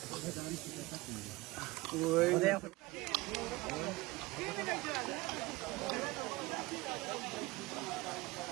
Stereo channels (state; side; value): quieter; left; 21.5 dB